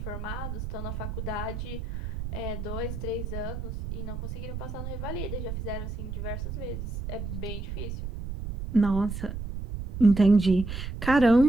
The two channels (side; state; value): right; noise; rumble, 6 dB below the sound